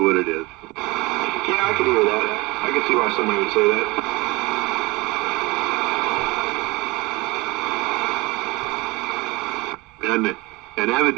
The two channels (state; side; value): quieter; left; 23.4 dB